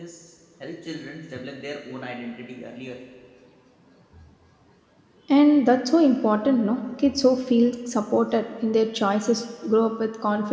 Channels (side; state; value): both; identical; correlation 1.00